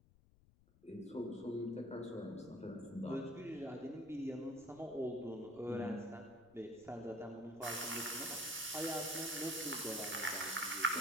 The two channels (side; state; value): left; noise; rumble, 27 dB below the sound